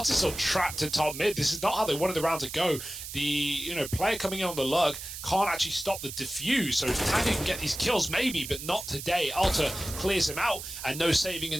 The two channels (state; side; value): noise; right; hiss, 9 dB below the sound